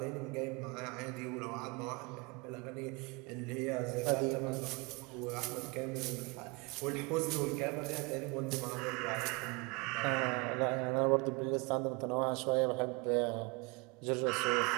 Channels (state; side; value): quieter; left; 28.5 dB